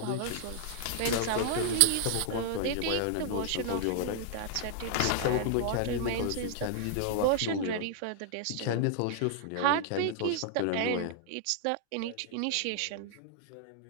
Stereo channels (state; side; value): different; both; correlation -0.01